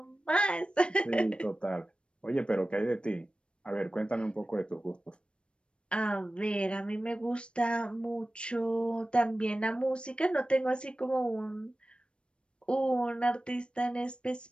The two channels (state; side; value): late; right; 0.056 ms